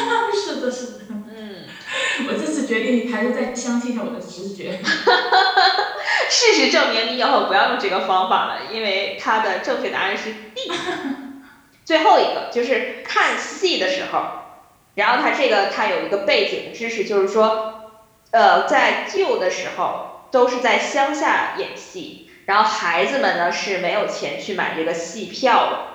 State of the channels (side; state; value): both; identical; correlation 1.00